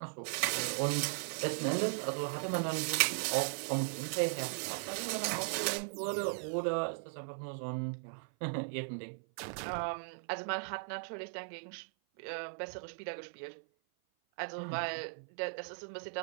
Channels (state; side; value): silent; left; 53 dB below the other